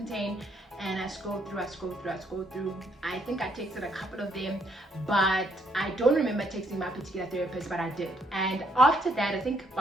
and I scrolled through. I think I texted a couple of them, but I don't remember texting my particular therapist, but I did. And after that, I think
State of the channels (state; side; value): normal; both; correlation 0.71